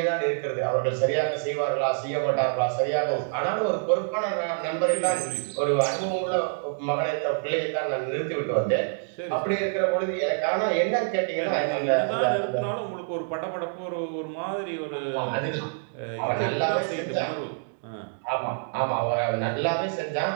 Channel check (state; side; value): silent; left; digital silence